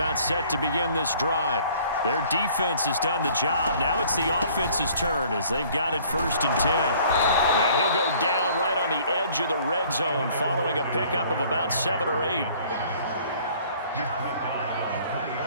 set to begin this drive. Their defense has done the job. Now it's the offense's turn as they've got it 1st and 10. And he'll go down right on the edge of the red zone following a pickup of about 7 or 8.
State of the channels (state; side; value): inverted; both; correlation -0.55